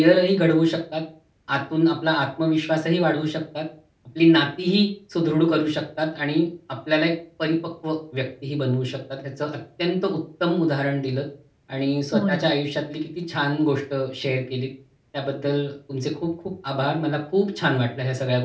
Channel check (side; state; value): both; identical; correlation 1.00